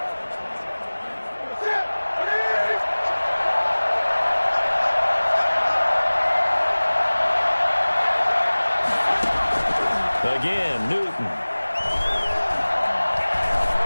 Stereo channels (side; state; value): both; inverted; correlation -1.00